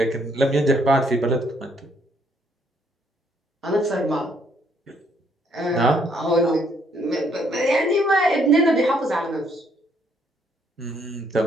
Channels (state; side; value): normal; both; correlation 0.69